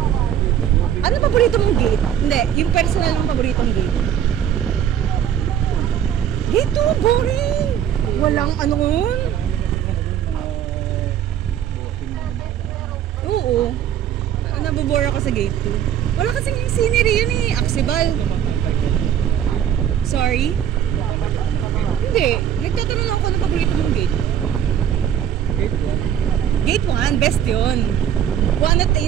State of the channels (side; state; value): left; quieter; 9.9 dB